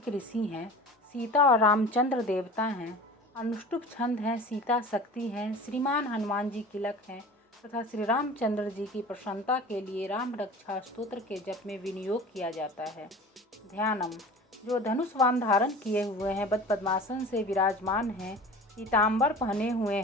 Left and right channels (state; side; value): normal; both; correlation 0.39